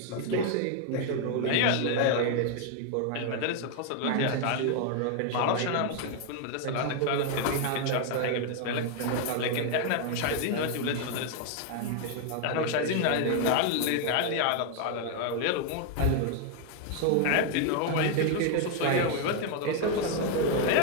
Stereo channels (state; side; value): different; both; correlation 0.01